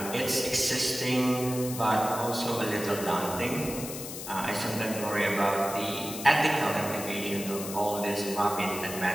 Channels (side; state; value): left; noise; hiss, 9 dB below the sound